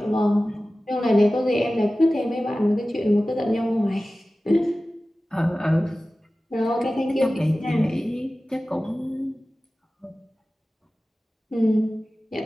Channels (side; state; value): both; normal; correlation 0.96